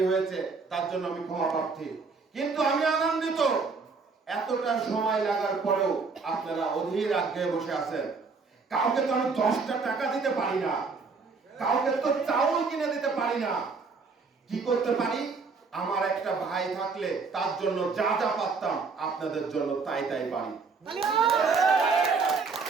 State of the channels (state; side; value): quieter; left; 4.7 dB